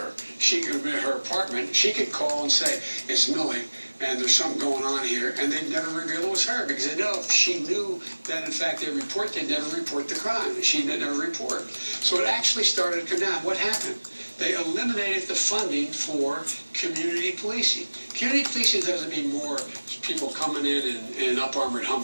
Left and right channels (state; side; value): inverted; both; correlation -1.00